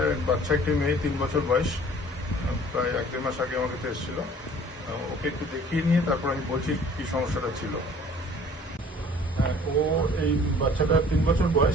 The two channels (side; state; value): both; normal; correlation 0.51